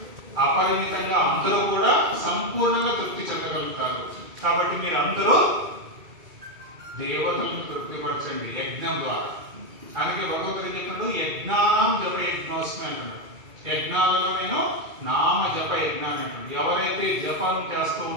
అపరిమితంగా అందరూ కూడా సంపూర్ణంగా తృప్తి చెందగలుగుతారు. కాబట్టి మీరు అందరూ దేవతలను తృప్తిపరచండి యజ్ఞం ద్వారా. అందుకే భగవంతుడు చెప్పినప్పుడు యజ్ఞానం జప యజ్ఞోస్మి అంటున్నాడు. యజ్ఞాలలో నేను నామ జప యజ్ఞాన్ని అంటున్నాడు. ఎవరైతే జపం చేస్తూ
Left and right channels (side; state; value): left; late; 2.3 ms